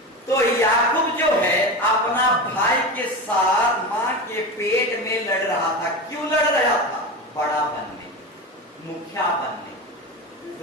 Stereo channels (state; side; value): normal; both; correlation 0.24